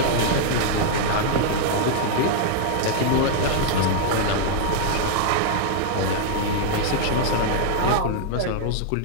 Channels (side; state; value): both; different; correlation 0.00